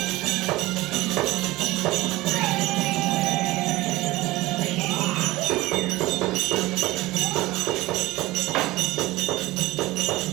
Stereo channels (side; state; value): left; quieter; 19.1 dB